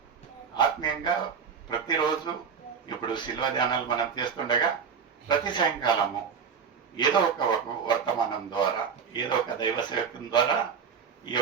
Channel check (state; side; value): quieter; left; 6.4 dB